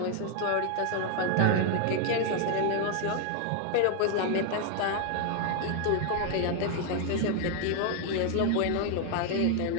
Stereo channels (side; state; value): both; different; correlation 0.01